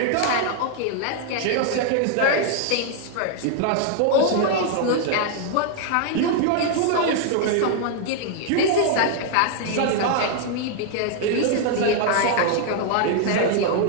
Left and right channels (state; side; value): different; both; correlation 0.00